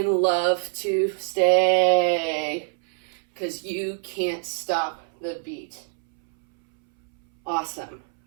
love to stay, because you can't stop the beat. Awesome.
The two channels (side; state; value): left; silent; 62 dB below the other